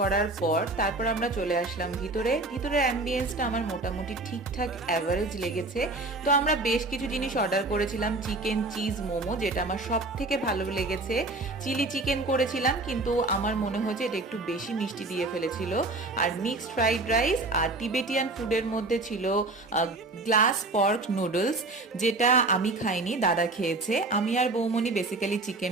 পর তারপর আমরা চলে আসলাম ভিতরে। ভিতরের অ্যাম্বিয়েন্সটা আমার মোটামুটি ঠিকঠাক অ্যাভারেজ লেগেছে। তো আমরা বেশ কিছু জিনিস অর্ডার করেছিলাম, চিকেন চিজ মোমো, যেটা আমার সব থেকে ভালো লেগেছে। চিলি চিকেন করেছিলাম, কিন্তু আমার মনে হয়েছে এটা একটু বেশি মিষ্টি দিয়ে ফেলেছিল। আর মিক্সড ফ্রাইড রাইস, আর টিবেটিয়ান ফুডের মধ্যে ছিল গ্লাস পর্ক নুডলস, যেটা আমি খাইনি, দাদা খেয়েছে। আমি আর বৌমনি বেসিক্যালি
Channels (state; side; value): quieter; left; 3.1 dB